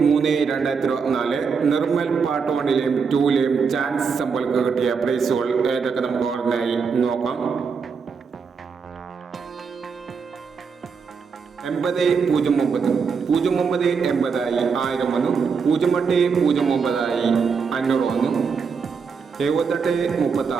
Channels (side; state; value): left; quieter; 5.7 dB